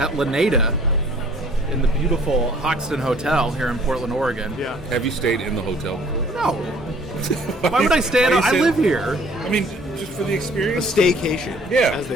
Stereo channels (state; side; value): normal; both; correlation 0.56